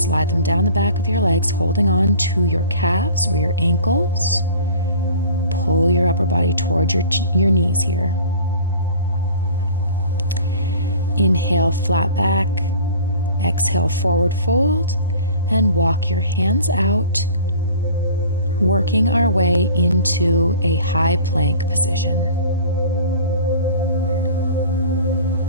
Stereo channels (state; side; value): inverted; both; correlation -0.44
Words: slide them down the back of your legs, holding on to your calves or your ankles. Pull your upper body towards your knees here. Inhale, flat back. Exhale, forward fold, and walk your hands out, working our way into a high plank position.